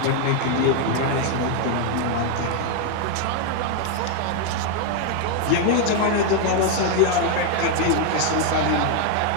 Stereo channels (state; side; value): different; both; correlation 0.01